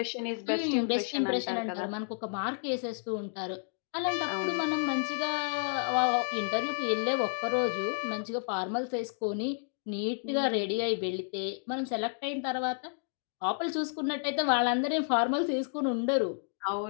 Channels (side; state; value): right; silent; digital silence